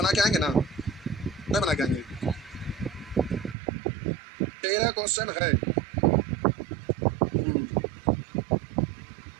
के आएंगे ना, नहीं बना के आएंगे। 13 क्वेश्चन है।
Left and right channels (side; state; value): left; drops out; at 3.6 s